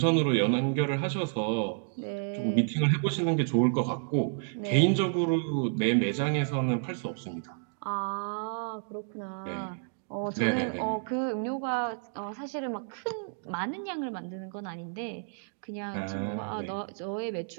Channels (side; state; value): left; silent; digital silence